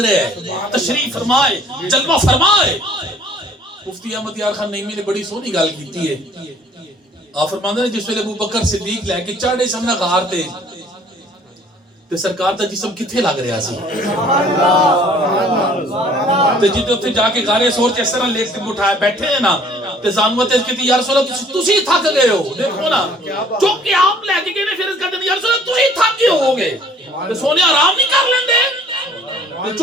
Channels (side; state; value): both; normal; correlation 0.56